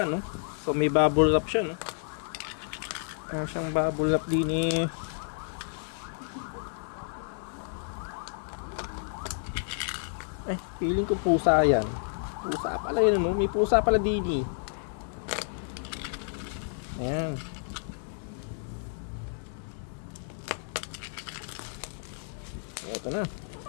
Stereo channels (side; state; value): right; silent; digital silence